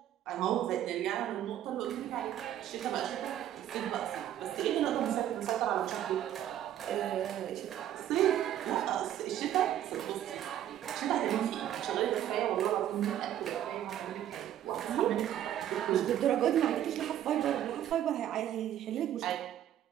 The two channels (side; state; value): left; quieter; 11.4 dB